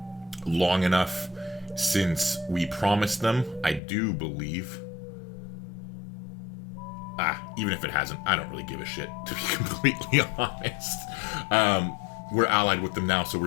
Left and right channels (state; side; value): drops out; right; at 3.8 s